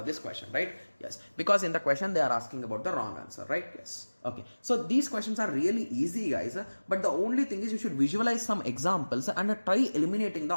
this question, right? Yes. Because in the question they are asking about the wrong answer, right? Yes. Okay. So these questions are really easy, guys. But the only thing is you should visualize some examples and try eliminating the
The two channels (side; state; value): both; inverted; correlation -1.00